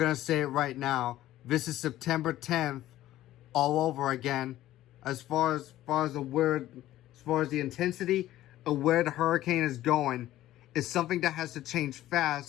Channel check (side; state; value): right; quieter; 14.3 dB